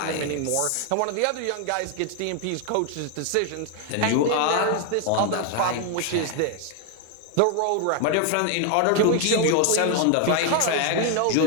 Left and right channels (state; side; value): different; both; correlation 0.01